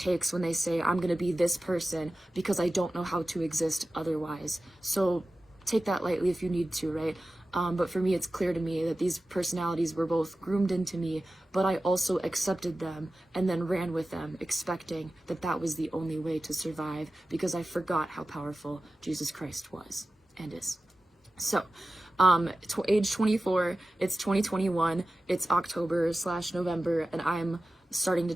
when they say, I'm going to be this person because I don't know how to exist otherwise. So take that lightly if you need to, right? But for me, it's clear to me that these personalities were both groomed into me, but I also accepted them and then ran with them, expecting that that was the only way to survive, because I forgot how powerful Jesus Christ was and is. So, age 24, it's 2021, it's October/November, and I'm starting to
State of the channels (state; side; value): normal; both; correlation 0.94